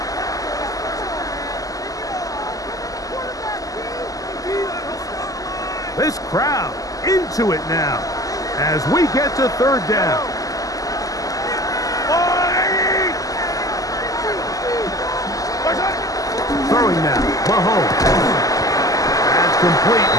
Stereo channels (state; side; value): late; right; 0.17 ms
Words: This crowd into it now as we get to third down. Throwing now, Mahomes. That's complete